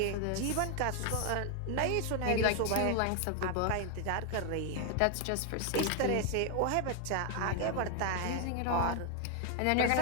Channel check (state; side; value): different; both; correlation 0.00